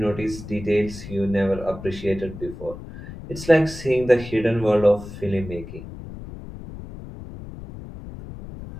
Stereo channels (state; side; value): noise; left; rumble, 12 dB below the sound